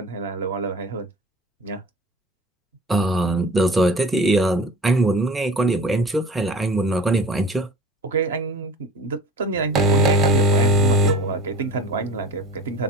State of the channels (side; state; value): both; normal; correlation 0.39